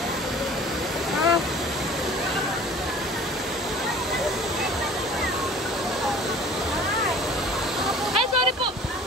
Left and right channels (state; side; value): normal; both; correlation 0.47